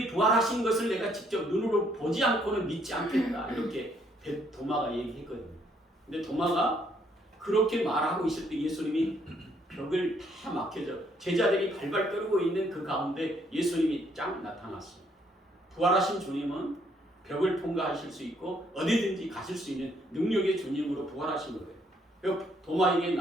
부활하신 것을 내가 직접 눈으로 보지 않고는 믿지 않겠다. 이렇게 도마가 얘기했거든요. 근데 도마가 그렇게 말하고 있을 때 예수님이 벽을 다 막혀져 제자들이 발발 떨고 있는 그 가운데 예수님이 쫙 나타났어요. 부활하신 주님은 벽을 통과하실 수 있고 어디든지 가실 수 있는 능력의 주님으로 부활하신 거예요. 도마에게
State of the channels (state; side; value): normal; both; correlation 0.69